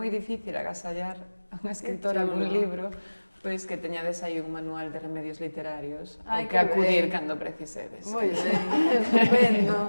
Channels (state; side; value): inverted; both; correlation -1.00